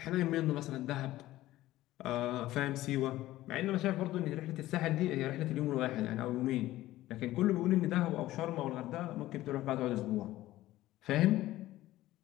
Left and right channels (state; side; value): quieter; right; 15.9 dB